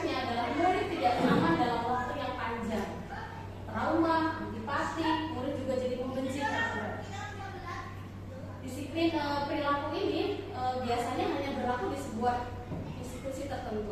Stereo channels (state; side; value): identical; both; correlation 1.00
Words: adalah murid tidak nyaman dalam waktu yang panjang, trauma, antipati, murid juga jadi membenci peraturan. Disiplin perilaku ini biasanya hanya berlaku di sebuah institusi